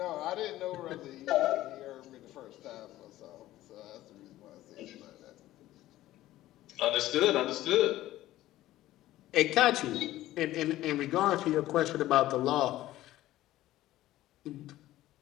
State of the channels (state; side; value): quieter; right; 15.2 dB